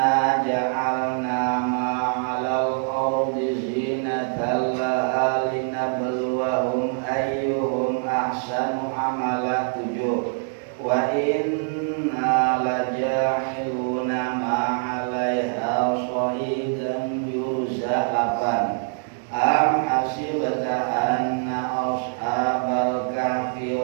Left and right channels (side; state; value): left; silent; 63 dB below the other